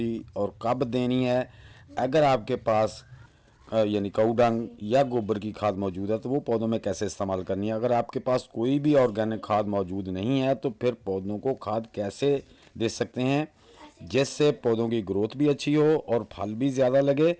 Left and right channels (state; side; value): identical; both; correlation 1.00